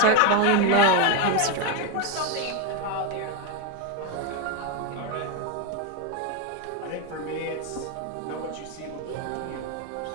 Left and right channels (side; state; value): both; different; correlation 0.02